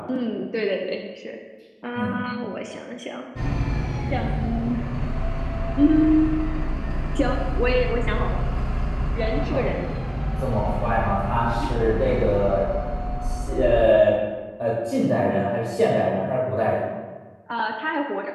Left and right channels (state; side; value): identical; both; correlation 1.00